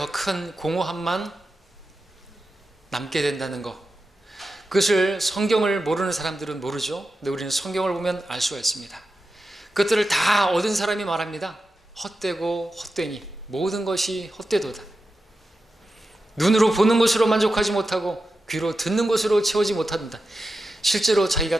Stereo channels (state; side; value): normal; both; correlation 0.91